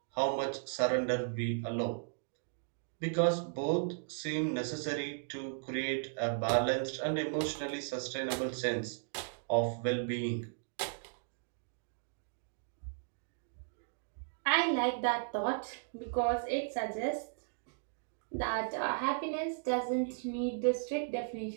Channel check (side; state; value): left; silent; digital silence